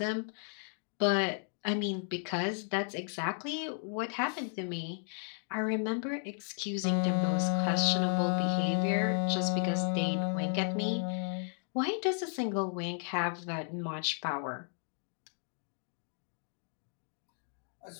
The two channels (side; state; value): right; silent; 55 dB below the other